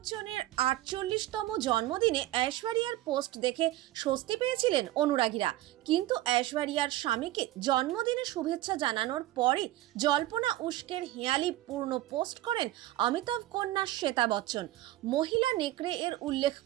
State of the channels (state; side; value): quieter; left; 15.8 dB